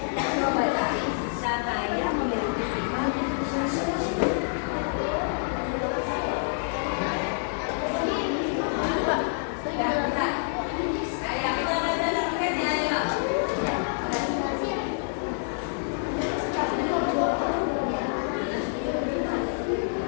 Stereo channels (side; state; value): right; silent; digital silence